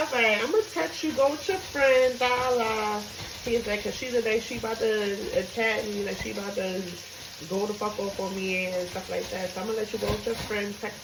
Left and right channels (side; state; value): both; identical; correlation 1.00